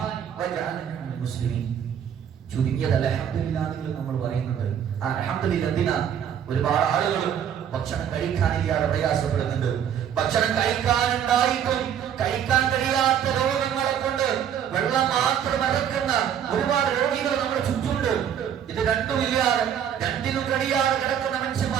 വജഅലനി മിനൽ മുസ്ലിമീൻ. ചുരുങ്ങിയത് അൽഹംദുലില്ലാഹ് നിങ്ങൾ നമ്മൾ പറയുന്നുണ്ട്. ആ അൽഹംദുലില്ലാഹ് എന്തിനാ? ഒരുപാട് ആളുകൾ ഭക്ഷണം കഴിക്കാനില്ലാതെ പ്രയാസപ്പെടുന്നുണ്ട്. ഭക്ഷണം കഴിക്കാനുണ്ടായിട്ടും കഴിക്കാൻ കഴിയാത്ത രോഗങ്ങളെ കൊണ്ട് വെള്ളം മാത്രം ഇറക്കുന്ന ഒരുപാട് രോഗികൾ നമ്മുടെ ചുറ്റുമുണ്ട്. ഇത് രണ്ടുമില്ലാതെ രണ്ടിനും കഴിയാതെ കിടക്കുന്ന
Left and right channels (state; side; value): quieter; left; 9.0 dB